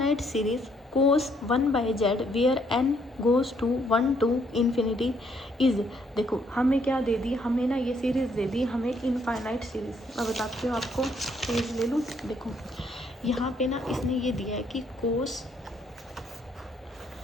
series cos 1/z where n goes to 1 to infinity is. देखो हमें क्या दे दी, हमें ना ये सीरीज़ दे दी, हमें इनफाइनाइट सीरीज़। मैं बताती हूँ आपको, पेज ले लूँ। देखो यहाँ पे ना इसने ये दिया है कि कोस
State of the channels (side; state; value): both; normal; correlation 0.69